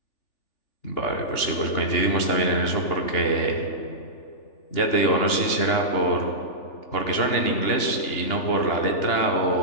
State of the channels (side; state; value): right; late; 3.4 ms